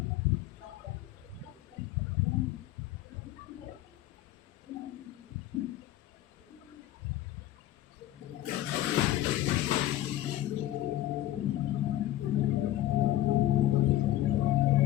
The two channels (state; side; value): quieter; right; 14.2 dB